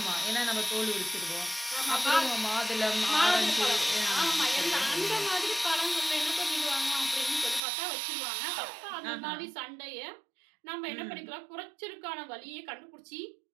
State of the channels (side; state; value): left; drops out; at 7.6 s